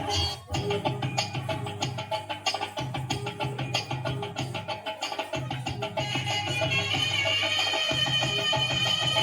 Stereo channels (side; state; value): both; identical; correlation 1.00